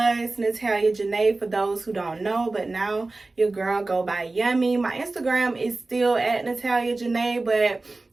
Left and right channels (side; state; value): left; quieter; 3.3 dB